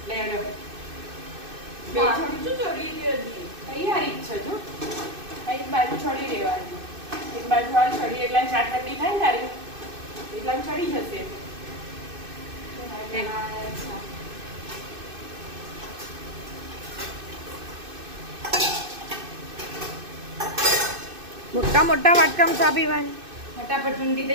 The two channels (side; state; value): left; late; 2.6 ms